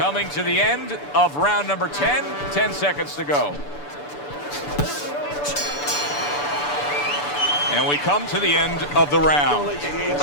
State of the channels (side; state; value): right; late; 6.9 ms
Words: to the end of round number 10, 10 seconds to go. And we come to the end of the round. Don't let your